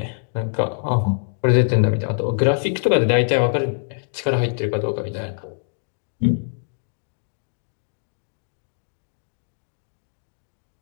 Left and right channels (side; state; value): right; silent; digital silence